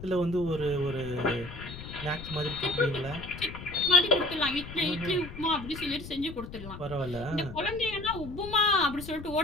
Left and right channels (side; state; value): left; noise; rumble, 12 dB below the sound